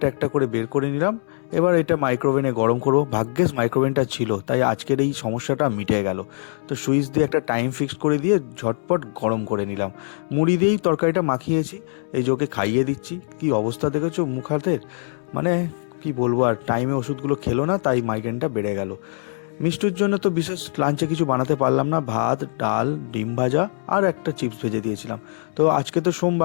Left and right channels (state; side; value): silent; right; digital silence